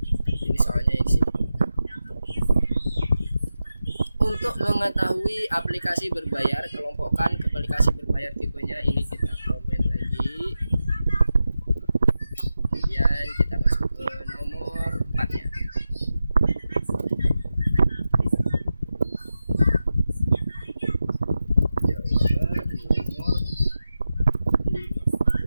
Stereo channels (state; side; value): inverted; both; correlation -0.91